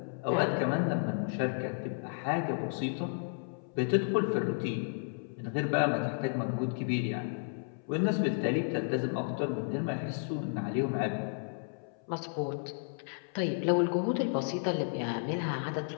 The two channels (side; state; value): right; silent; 56 dB below the other